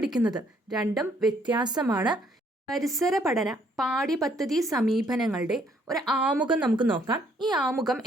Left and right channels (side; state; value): both; normal; correlation 0.66